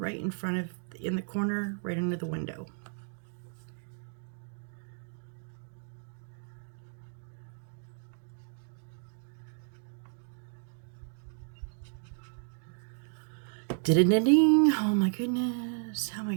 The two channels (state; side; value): silent; left; 56 dB below the other